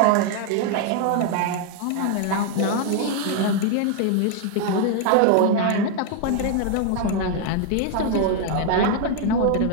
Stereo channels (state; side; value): different; both; correlation 0.00